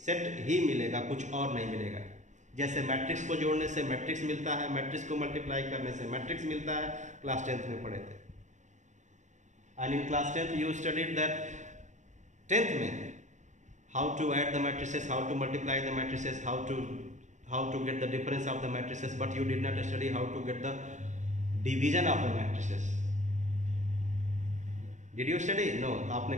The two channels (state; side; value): late; left; 0.35 ms